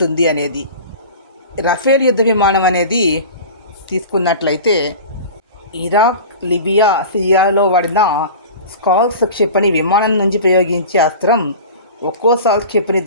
అనేది. రఫేల్ యుద్ధ విమానం అనేది తీసుకున్నట్లయితే ఇరాక్, లిబియా, సిరియాలో వాడిన స్కాల్స్ క్షిపణి విమానం నుంచి ప్రయోగించే అస్త్రం ఒక్కో సాల్ట్ క్షిపణి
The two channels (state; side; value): inverted; both; correlation -0.36